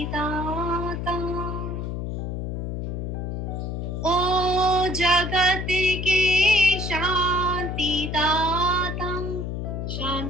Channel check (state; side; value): noise; left; hum, 3 dB below the sound